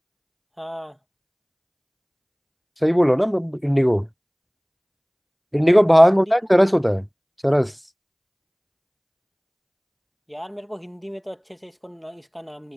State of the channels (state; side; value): identical; both; correlation 1.00